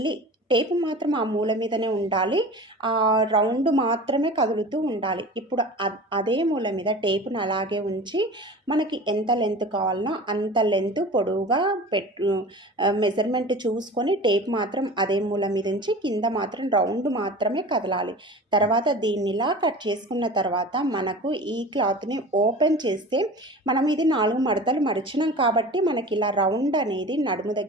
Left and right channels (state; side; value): normal; both; correlation 0.37